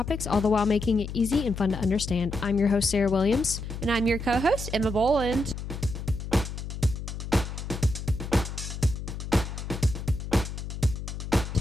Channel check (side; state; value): left; noise; hum, 7 dB below the sound